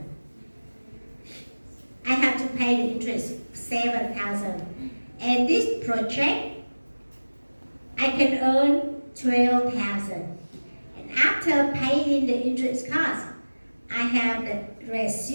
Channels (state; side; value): inverted; both; correlation -1.00